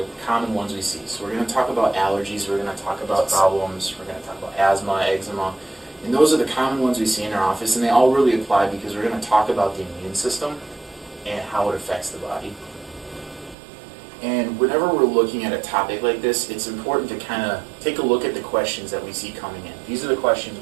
common ones we see. So we're going to talk about allergies, we're going to talk about problems, we're going to talk about asthma, eczema, and those are the common ones we see in our office, and they all really apply because we're going to talk about the immune system and how it affects the body. And whenever we're looking at a topic like this, it's important to kind of take a look at the questions that we see coming in. These are the questions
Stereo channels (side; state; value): left; drops out; at 13.6 s